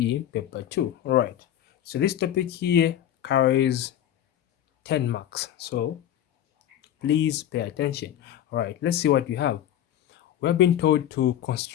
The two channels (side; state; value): right; quieter; 11.2 dB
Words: paper 2. Alright, so this topic here carries 10 marks, so please pay attention. Alright, let's see what you have. We're being told to